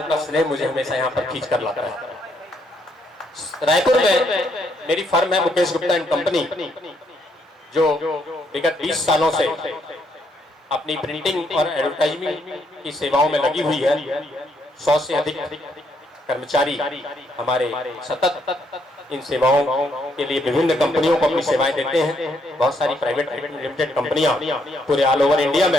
का स्नेह मुझे हमेशा यहाँ पर खींच कर लाता है। रायपुर में मेरी फर्म है मुकेश गुप्ता एंड कंपनी, जो विगत 20 सालों से अपनी प्रिंटिंग और एडवर्टाइजमेंट की सेवाओं में लगी हुई है। 100 से अधिक कर्मचारी हमारे सतत इन सेवाओं के लिए विभिन्न कंपनियों को अपनी सेवाएं देते हैं। बहुत सारी प्राइवेट लिमिटेड कंपनियां पूरे ऑल ओवर इंडिया में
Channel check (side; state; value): both; normal; correlation 0.73